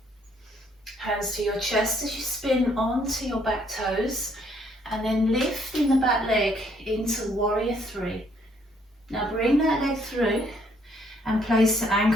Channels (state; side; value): normal; both; correlation 0.67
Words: Hands to your chest as you spin onto your back toes and then lifting the back leg into warrior 3. Now bring that leg through and place the